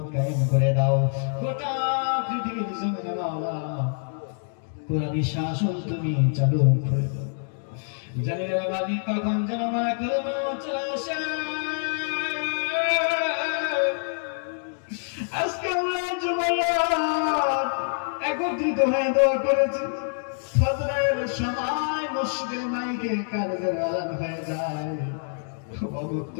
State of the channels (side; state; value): right; silent; digital silence